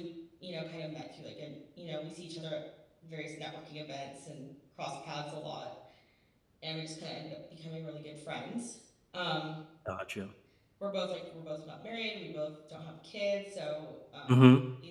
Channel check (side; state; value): both; identical; correlation 1.00